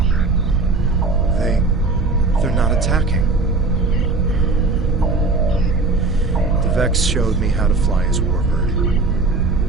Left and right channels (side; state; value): left; quieter; 3.5 dB